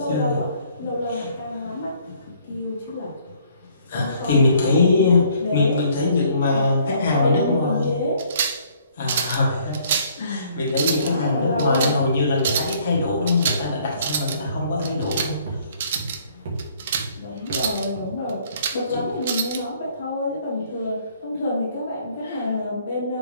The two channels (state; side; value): inverted; both; correlation -0.62